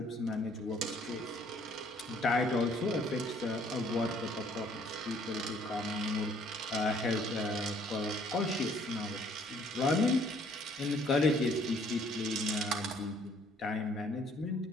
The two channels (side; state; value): both; normal; correlation 0.61